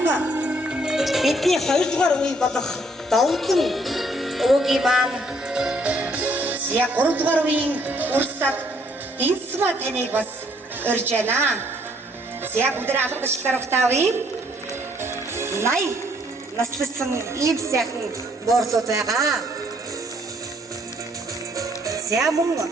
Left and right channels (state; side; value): normal; both; correlation 0.66